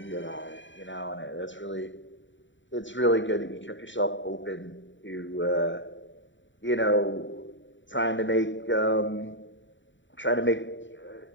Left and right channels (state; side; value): late; right; 0.54 ms